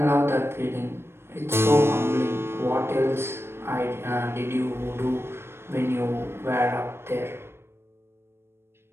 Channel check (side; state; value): left; late; 0.12 ms